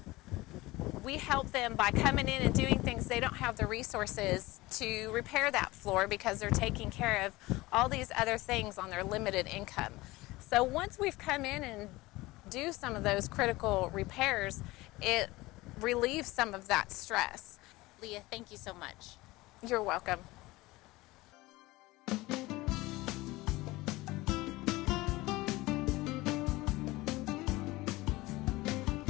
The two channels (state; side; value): quieter; right; 20.2 dB